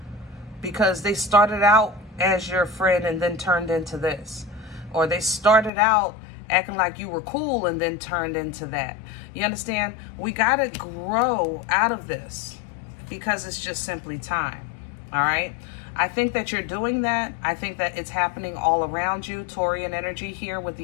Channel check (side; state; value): right; drops out; at 5.7 s